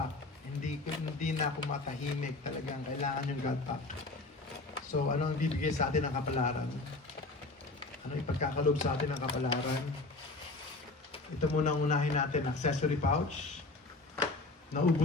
Hindi na ako matahimik. Talagang kailangan yung God Pack. So, ano ang bibigay sa atin ng kapalaran? Ano ipagkakalob sa atin ng kapalaran? Ito muna ang unahin natin, accessory pouch.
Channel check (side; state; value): right; quieter; 3.3 dB